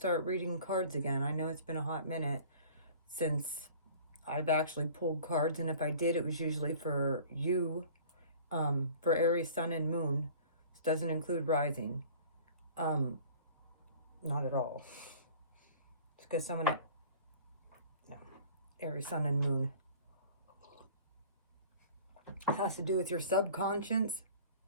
reading cards again. I know it's been a hot minute since I've actually pulled cards, and if I did, it was usually for you, for Aries, Sun, and Moon. This doesn't include Rising. Not at all. It's because no, Aries, Sun, and Moon. It has to do with your subconscious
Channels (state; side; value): inverted; both; correlation -0.46